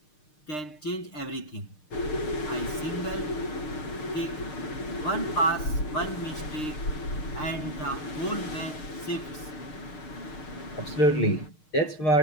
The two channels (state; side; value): late; right; 6.6 ms